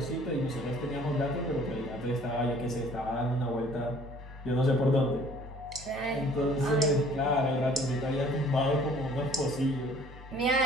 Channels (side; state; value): both; normal; correlation 0.55